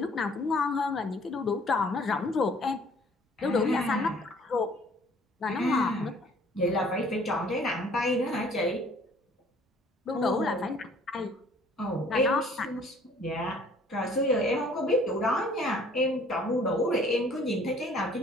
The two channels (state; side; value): normal; both; correlation 0.56